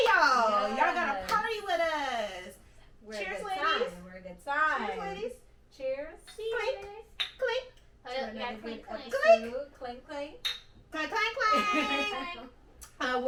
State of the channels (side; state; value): both; identical; correlation 1.00